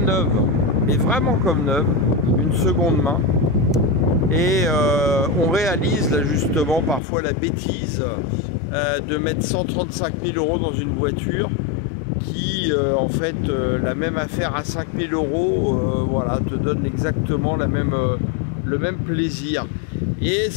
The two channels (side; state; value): right; drops out; at 7.0 s